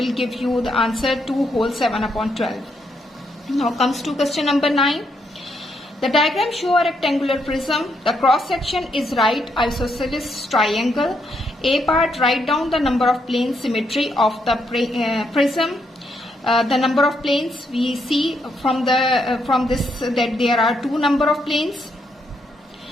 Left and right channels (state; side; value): normal; both; correlation 0.77